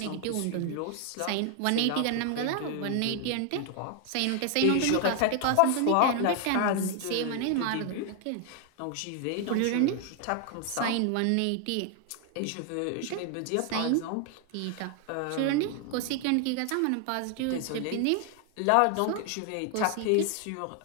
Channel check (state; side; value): different; both; correlation 0.00